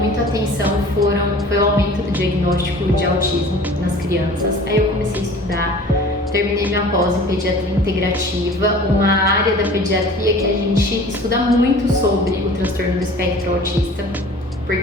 muito a atenção foi o aumento do diagnóstico de autismo nas crianças. Aí eu comecei a estudar, terminei minha pós em pediatria integrativa, uma área da pediatria que a gente estuda muito sobre o transtorno do espectro autista,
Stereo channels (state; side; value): normal; both; correlation 0.44